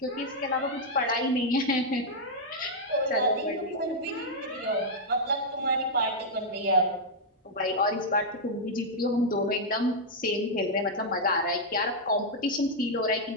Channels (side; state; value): both; normal; correlation -0.04